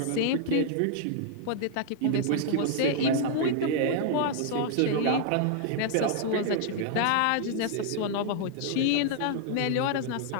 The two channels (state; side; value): different; both; correlation -0.01